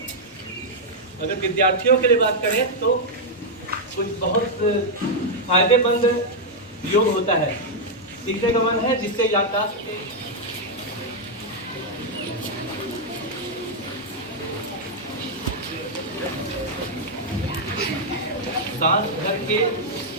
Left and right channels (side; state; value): both; normal; correlation -0.03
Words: अगर विद्यार्थियों के लिए बात करें तो कुछ बहुत फायदेमंद योग होता है। सीखने का मन है, जिससे याददाश्त सांस भर के